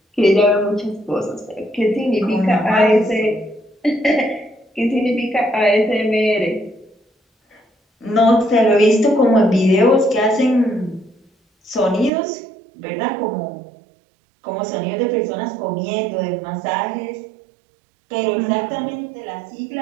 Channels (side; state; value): left; drops out; at 12.1 s